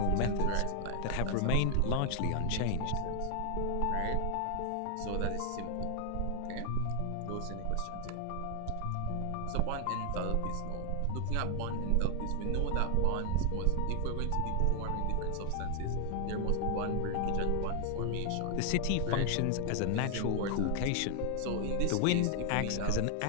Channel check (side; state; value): both; different; correlation 0.00